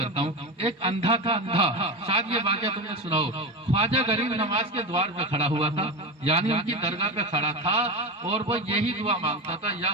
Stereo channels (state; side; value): normal; both; correlation 0.21